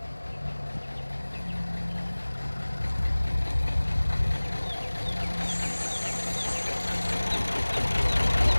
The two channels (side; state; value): both; inverted; correlation -1.00